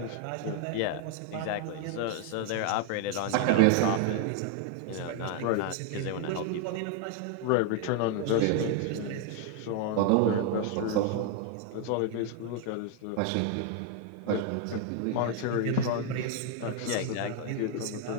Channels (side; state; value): both; different; correlation 0.00